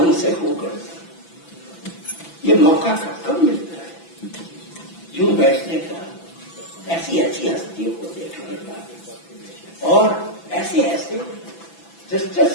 سے ہو کرتا، یہ موقع کب ملتا ہے یوں بیٹھنے کا، ایسی ایسی ہستیوں کو دیکھنے کا، اور ایسے ایسے جسٹس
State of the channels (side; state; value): right; late; 6.0 ms